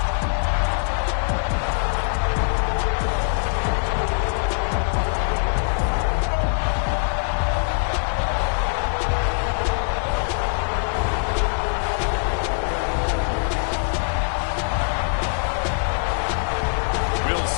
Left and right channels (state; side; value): silent; right; 64 dB below the other